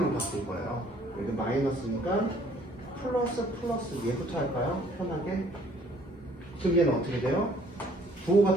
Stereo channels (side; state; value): both; normal; correlation 0.59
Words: 바꿀 거예요. 여기 마이너스니까 플러스 플러스 얘부터 할까요? 편하게. 그럼 얘는 어떻게 돼요? 부호가